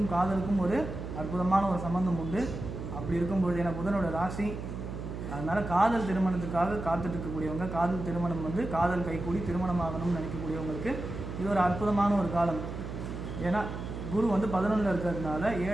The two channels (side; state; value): right; noise; hum, 7 dB below the sound